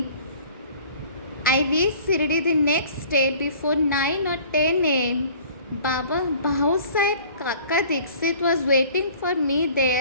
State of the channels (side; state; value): both; inverted; correlation -0.50